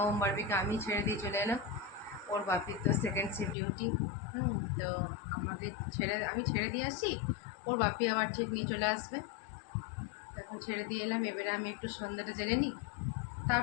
ওম বাড়বিকে আমি ছেড়ে দিয়ে চলে এলাম। ওর বাপির তো সেকেন্ড শিফট ডিউটি। তো আমি ছেড়ে দিয়ে আসি, ওর বাপি আবার ঠিক নিয়ে চলে আসবে। এখন ছেড়ে দিয়ে এলাম। এবারে আমি একটু সন্ধ্যাটা জেনে নিই,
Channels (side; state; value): right; drops out; at 3.6 s